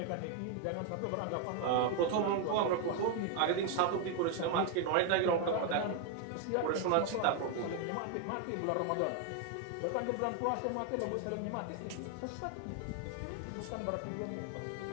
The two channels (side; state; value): both; different; correlation 0.01